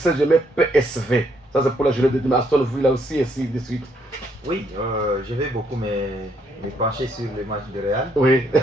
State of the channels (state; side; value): normal; both; correlation 0.72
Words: PSV. Ça, c'est pour la journée de demain. Aston Villa aussi, et ainsi de suite. Oui, je vais beaucoup me pencher sur les matchs de Real. Oui.